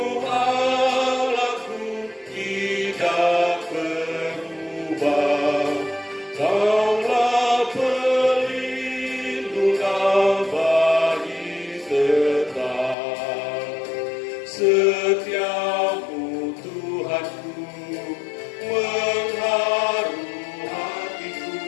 Allahku tidak berubah. Kaulah pelindung abadi tetap, setiamu Tuhanku mengharu hatiku.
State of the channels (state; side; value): drops out; right; at 13.0 s